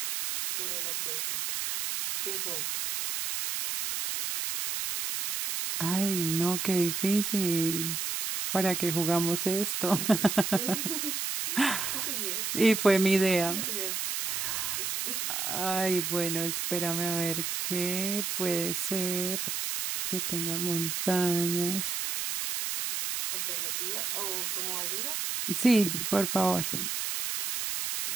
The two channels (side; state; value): right; noise; hiss, 2 dB below the sound